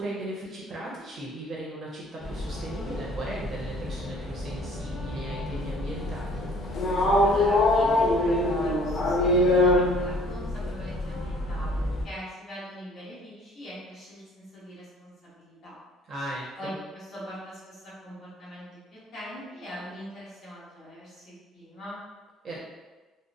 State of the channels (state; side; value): normal; both; correlation 0.54